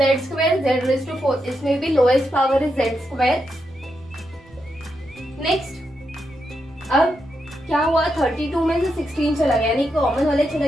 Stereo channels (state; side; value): noise; right; rumble, 28 dB below the sound